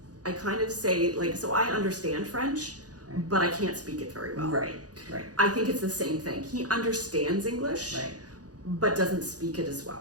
kind of say, like, so I understand French, but I can't speak it very well. Right. I think it's the same thing. He understands English, but doesn't speak it as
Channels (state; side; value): late; left; 0.68 ms